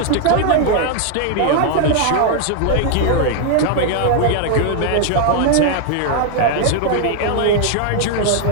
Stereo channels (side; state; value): both; different; correlation 0.00